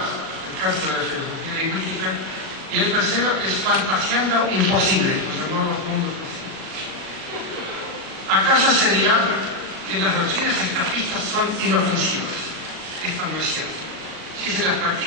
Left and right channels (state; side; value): late; left; 38 ms